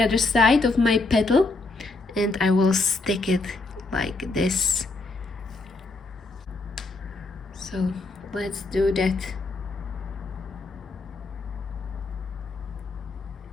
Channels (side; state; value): right; quieter; 3.4 dB